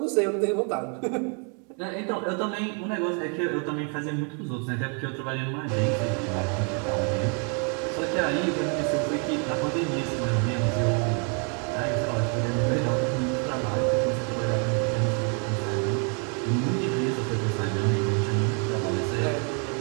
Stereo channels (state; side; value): quieter; left; 38.6 dB